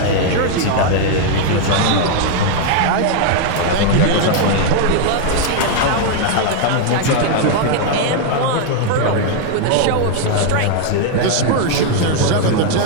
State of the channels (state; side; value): different; both; correlation 0.00